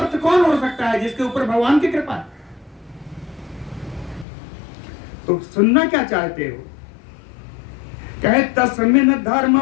कौन हो सकता है? जिसके ऊपर भगवान की कृपा है। तो सुनना क्या चाहते हो? कहे तस्मिन् धर्म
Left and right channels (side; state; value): right; drops out; at 4.2 s